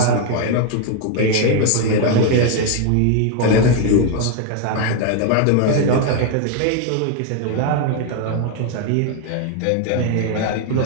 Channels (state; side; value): different; both; correlation 0.01